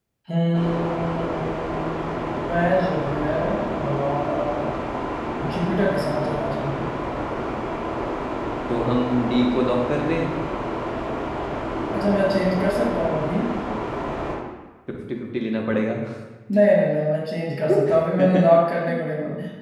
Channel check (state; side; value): identical; both; correlation 1.00